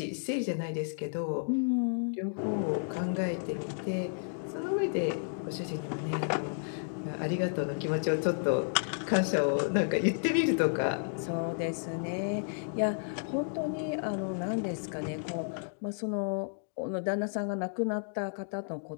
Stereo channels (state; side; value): silent; right; digital silence